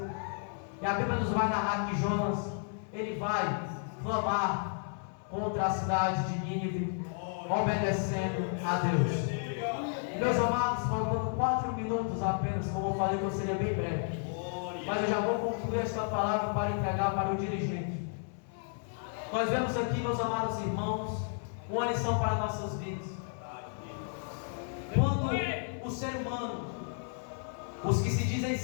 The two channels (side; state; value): right; silent; 56 dB below the other